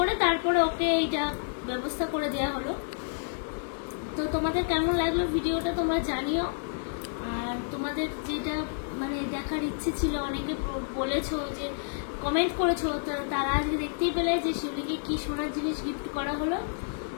তারপরে ওকে এইটা ব্যবস্থা করে দেওয়া হলো। তো তোমাদের কেমন লাগলো ভিডিওটা তোমরা জানিও। আর তোমাদের যেটা মানে দেখার ইচ্ছে ছিল, অনেকে বলেছো যে কমেন্ট করেছো, তারা আজকে দেখতেই পেলে যে শিউলিকে কি সোনার জিনিস গিফট করা হলো।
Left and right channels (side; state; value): right; silent; 56 dB below the other